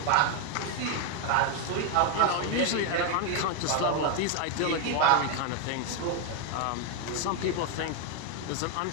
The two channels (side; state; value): both; different; correlation 0.01